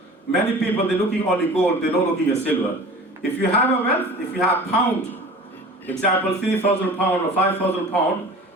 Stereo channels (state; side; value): normal; both; correlation 0.40